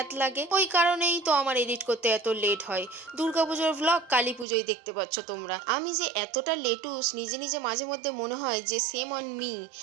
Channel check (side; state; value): left; drops out; at 4.5 s